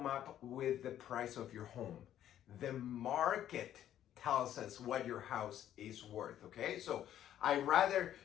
up with the price of your home. The market tells us what your house is worth, okay? So I rather,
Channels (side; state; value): right; quieter; 11.3 dB